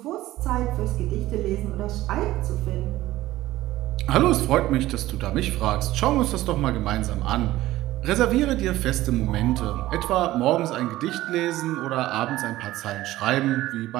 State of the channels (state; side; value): quieter; left; 16.0 dB